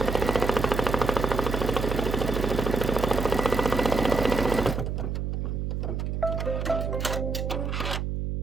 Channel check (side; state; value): right; noise; hum, 2 dB below the sound